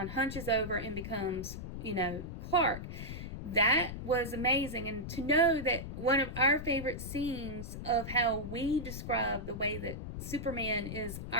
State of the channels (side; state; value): left; noise; rumble, 8 dB below the sound